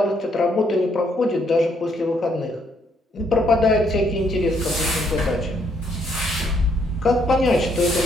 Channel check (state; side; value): normal; both; correlation 0.71